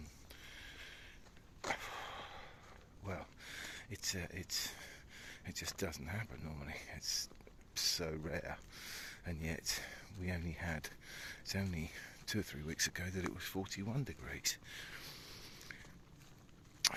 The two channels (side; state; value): both; identical; correlation 1.00